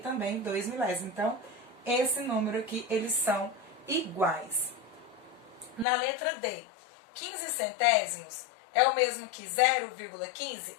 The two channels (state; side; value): drops out; right; at 5.9 s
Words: 2 milésimos. Então, esse número aqui, eles são iguais. Na letra D, 15 centésimos é o mesmo que 0,15?